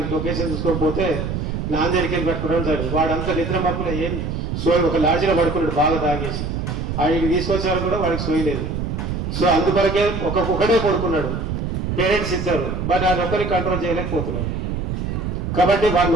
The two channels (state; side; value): noise; right; rumble, 3 dB below the sound